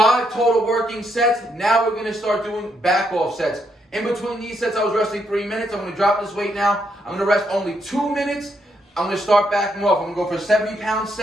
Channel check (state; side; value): normal; both; correlation 0.77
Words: total working sets. Now we're going to start doing back off sets. In between these sets, I was resting 3 minutes. I'm going to drop this weight now. I'm going to rest only 2 minutes. I'm going to start backing off. I'm going to go for a 70-pound